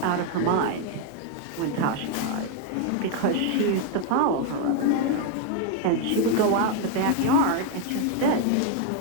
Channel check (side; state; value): both; different; correlation 0.01